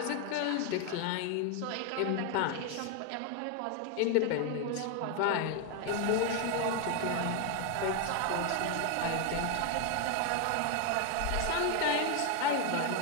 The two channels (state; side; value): different; both; correlation 0.01